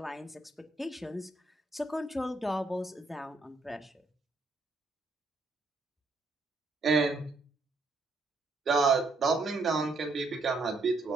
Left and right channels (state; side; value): quieter; left; 3.3 dB